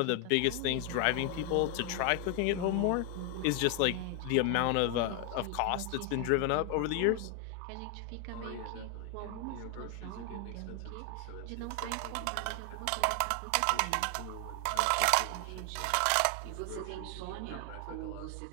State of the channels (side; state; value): both; different; correlation 0.00